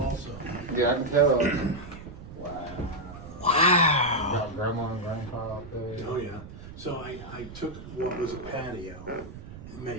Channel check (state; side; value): noise; right; rumble, 14 dB below the sound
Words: also. Yeah, I can tell. Wow. Wow. Got grandma and grandpa up there. Oh, yeah. So I took what was a patio and